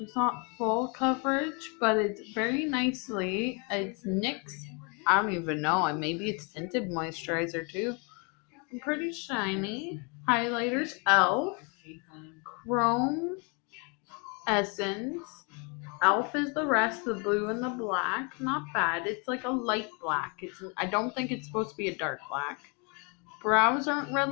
not full coverage, but it's very nicely. It's NYX. I don't even know. Maybe it's tinted moisturizer too. I'm pretty shiny. Highlighters, ELF. Chrome Essence. ELF is the rest, the blue and the black. Not bad. It's like a light black. I don't think it's supposed to be a dark black. Brows aren't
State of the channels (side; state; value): right; quieter; 33.8 dB